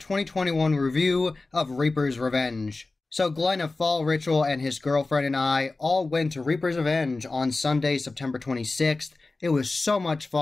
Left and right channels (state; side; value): quieter; right; 3.4 dB